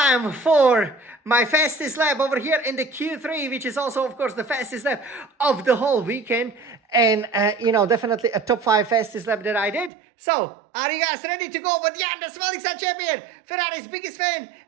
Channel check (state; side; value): drops out; left; at 9.9 s